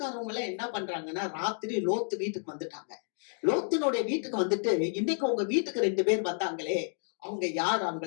எல்லாம் என்ன பண்றாங்கன்னா, ராத்திரி லோத்து வீட்டுக்கு வந்துட்டாங்க. லோத்தினுடைய வீட்டுக்கு வந்துட்டு, இன்னைக்கு உங்க வீட்டுக்கு 2 பேர் வந்தாங்களே, அவங்க யார்?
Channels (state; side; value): silent; right; 57 dB below the other